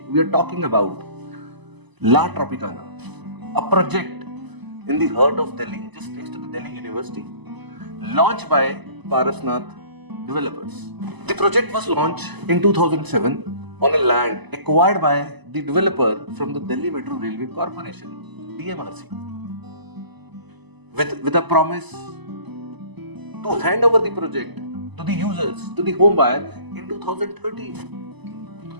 we are talking about La Tropicana, a project in the heart of Delhi, just next to the Delhi University, launched by Parsvnath Developers. The project was launched in 2007 on a land acquired by the developer from the Delhi Metro Railway Corporation, DMRC, with a promise to hand over the project to the users, to the home buyer in 2013.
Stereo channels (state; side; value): late; left; 1.0 ms